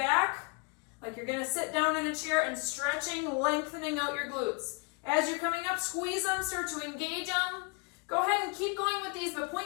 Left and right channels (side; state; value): right; quieter; 33.1 dB